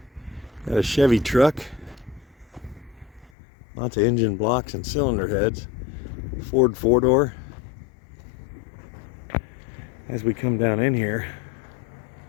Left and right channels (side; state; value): right; drops out; at 3.3 s